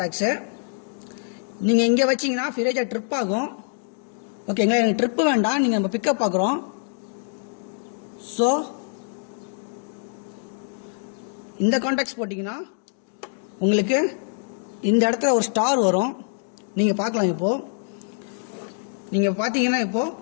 நீங்க இங்க வச்சீங்கன்னா ஃபிரேஜா ட்ரிப் ஆகும். ஓகேங்களா? எனக்கு ட்ரிப் வேண்டாம், நீங்க நம்ம பிக்கப் பார்க்குறோம். ஸோ இந்த கான்டாக்ட்ஸ் போட்டீங்கன்னா உங்களுக்கு இந்த இடத்துல ஒரு ஸ்டார் வரும். நீங்க பார்க்கலாம். இப்போ நீங்க பார்த்தீங்கன்னா இப்போ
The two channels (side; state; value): right; silent; digital silence